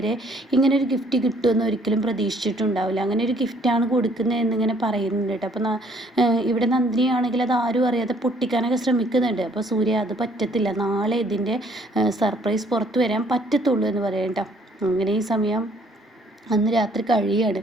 ഇങ്ങനൊരു ഗിഫ്റ്റ് കിട്ടുമെന്ന് ഒരിക്കലും പ്രതീക്ഷിച്ചിട്ടുണ്ടാവില്ല. അങ്ങനെ ഒരു ഗിഫ്റ്റാണ് കൊടുക്കുന്നത് എന്നിങ്ങനെ പറയുന്നുണ്ട് കേട്ടോ. അപ്പോൾ ഇവിടെ നന്ദിനിയാണെങ്കിൽ അത് ആരും അറിയാതെ പൊട്ടിക്കാനൊക്കെ ശ്രമിക്കുന്നുണ്ട്. അപ്പോൾ സൂര്യ അത് പറ്റത്തില്ല, നാളെ ഇതിൻ്റെ സർപ്രൈസ് പുറത്തു വരാൻ പറ്റത്തുള്ളൂ എന്ന് പറയാം കേട്ടോ. അങ്ങനെ ഈ സമയം അന്ന് രാത്രി കഴിയാണ്.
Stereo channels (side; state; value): both; normal; correlation 0.62